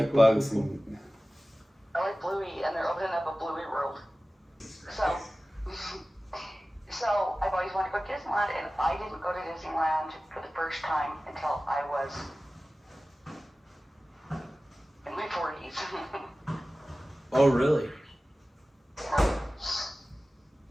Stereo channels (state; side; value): normal; both; correlation 0.96